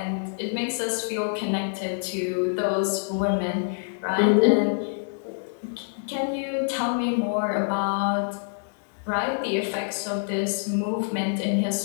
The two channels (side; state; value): right; silent; digital silence